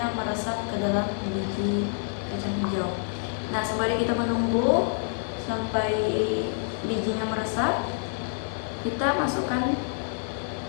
meresap ke dalam biji kacang hijau. Nah, sembari kita menunggu sampai bijinya meresap, kita masukkan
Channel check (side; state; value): right; silent; 56 dB below the other